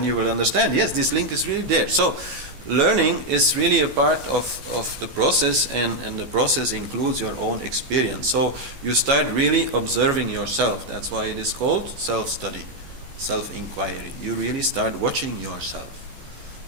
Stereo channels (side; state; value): left; late; 14 ms